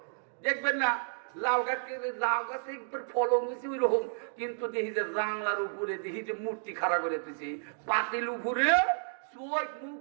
দেখবেন না লাউ গাছকে, লাউ গাছে ফলন হয়েছে ওই রকম, কিন্তু দেখি যে জাংলার উপরে দেখি যে মূর্তি খাড়া করে দিয়েছি, পাতিল উপরে চোখ মুখ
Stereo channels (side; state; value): left; silent; digital silence